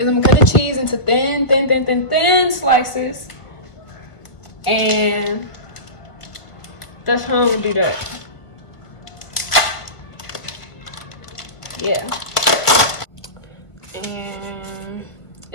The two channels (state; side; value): late; right; 1.6 ms